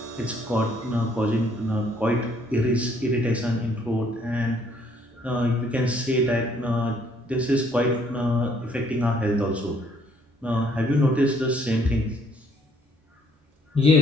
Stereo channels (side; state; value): both; normal; correlation 0.64